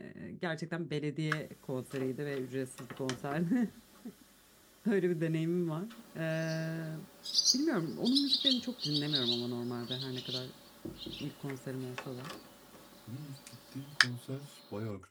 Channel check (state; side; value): identical; both; correlation 1.00